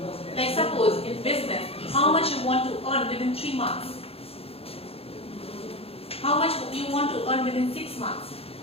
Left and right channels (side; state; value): right; late; 0.28 ms